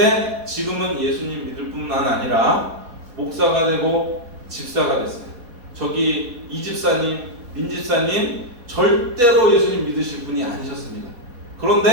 지금은 예수님 믿을 뿐만 아니라 목사가 되고 집사가 됐어요. 저기 이 집사님, 민 집사님 절대로 예수님 믿으실 분이 아니셨습니다.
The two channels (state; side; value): late; left; 4.2 ms